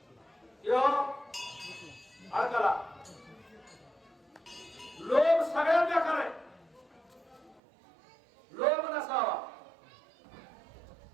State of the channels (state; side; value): drops out; left; at 7.6 s